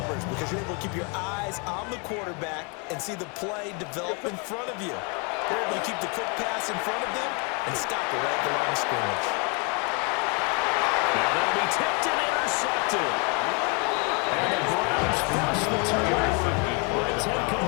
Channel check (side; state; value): right; quieter; 34.2 dB